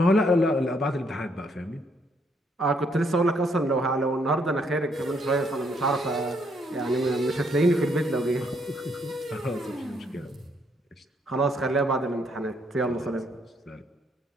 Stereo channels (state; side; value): normal; both; correlation 0.71